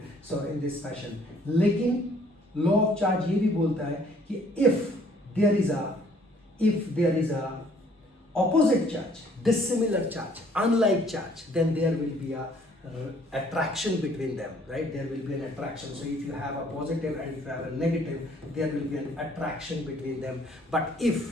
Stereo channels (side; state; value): both; normal; correlation 0.60